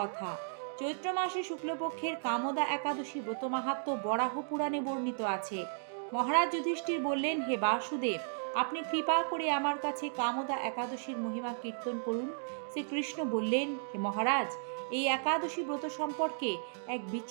চৈত্র মাসে শুক্লপক্ষের কামদা একাদশী ব্রত মাহাত্ম্য বরাহ পুরাণে বর্ণিত আছে। মহারাজ যুধিষ্ঠির বললেন, হে বাসুদেব, আপনি কৃপা করে আমার কাছে কামদা একাদশীর মহিমা কীর্তন করুন। শ্রীকৃষ্ণ বললেন, হে মহারাজ, এই একাদশী ব্রত সম্পর্কে এক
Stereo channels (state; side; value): silent; left; digital silence